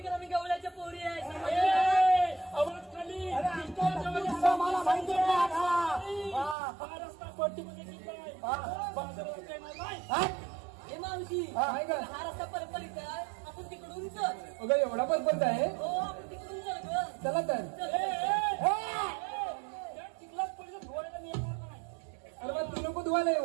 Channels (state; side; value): drops out; left; at 6.6 s